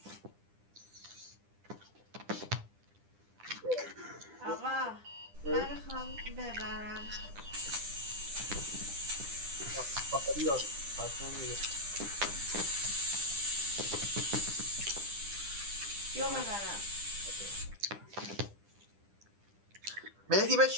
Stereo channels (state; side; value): late; left; 10 ms